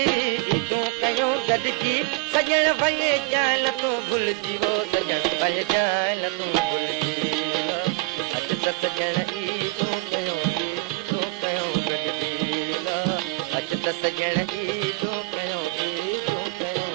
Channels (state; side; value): quieter; left; 22.8 dB